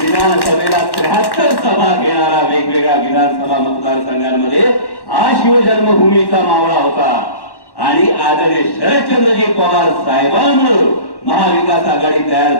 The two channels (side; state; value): right; late; 1.1 ms